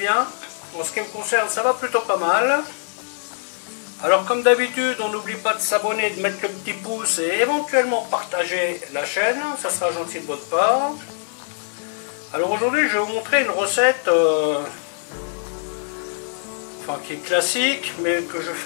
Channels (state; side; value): silent; right; digital silence